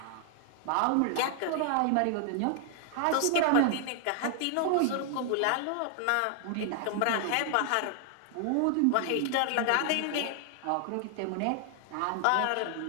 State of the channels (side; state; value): both; different; correlation 0.00